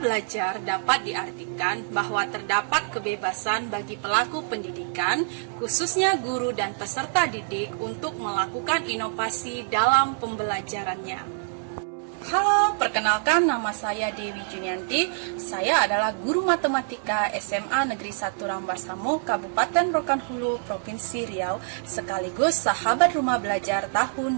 dapat diartikan bahwa terdapat kebebasan bagi pelaku pendidikan, khususnya guru dan peserta didik untuk melakukan inovasi dalam pembelajarannya. Halo, perkenalkan nama saya Dewi Junianti. Saya adalah guru matematika SMA Negeri 1 Rambasamo, Kabupaten Rokan Hulu, Provinsi Riau, sekaligus sahabat rumah belajar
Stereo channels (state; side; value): silent; left; 59 dB below the other